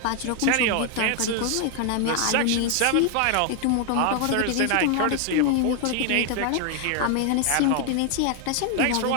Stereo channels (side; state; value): both; different; correlation 0.00